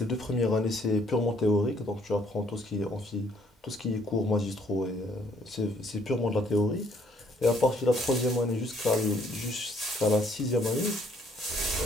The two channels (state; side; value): normal; both; correlation 0.65